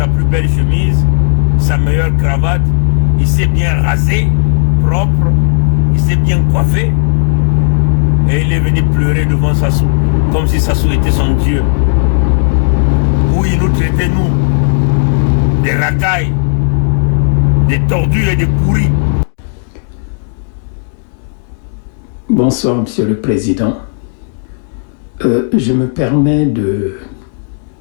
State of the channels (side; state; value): right; silent; digital silence